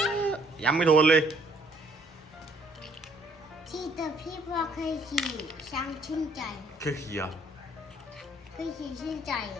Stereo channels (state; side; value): normal; both; correlation 0.63